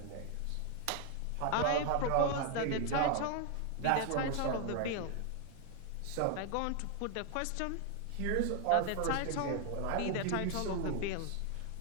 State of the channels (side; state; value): both; different; correlation 0.00